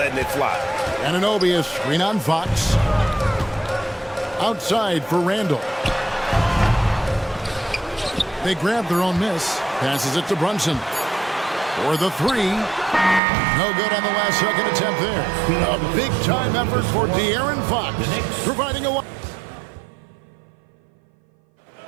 it fly. Anunoby is screen on Fox. Outside for Randall. They grab their own miss. Passes it to Brunson. For the three. No good on the last second attempt there. A big-time effort for De'Aaron Fox. Providing a...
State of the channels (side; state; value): left; drops out; at 13.2 s